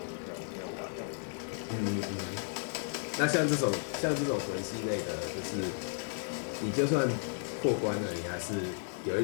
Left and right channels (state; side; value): silent; right; 55 dB below the other